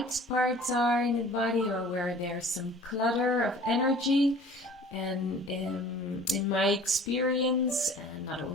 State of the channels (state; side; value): normal; both; correlation 0.48